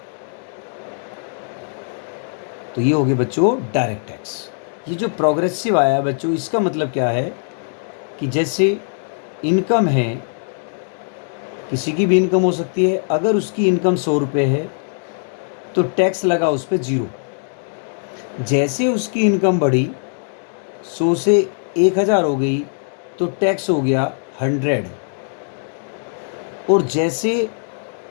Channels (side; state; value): right; silent; digital silence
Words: तो ये हो गए बच्चों डायरेक्ट टैक्स। ये जो प्रोग्रेसिव आया बच्चों, इसका मतलब क्या है कि जैसे इनकम है, किसी की भी इनकम हो सकती है, अगर उसकी इनकम 100 रुपये है तो टैक्स लगा उस पर 0। जैसे उसकी इनकम बढ़ी, 100 से 1000 हो गई तो टैक्स हो गया 100, और जैसे